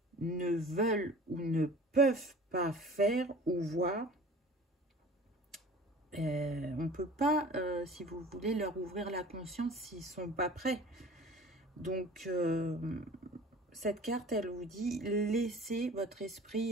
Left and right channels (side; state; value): both; normal; correlation 0.43